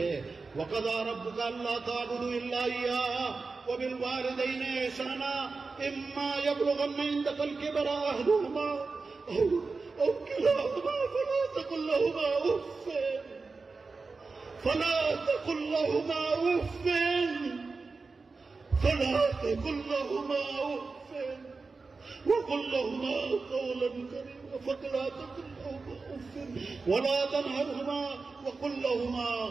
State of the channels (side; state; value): left; quieter; 4.2 dB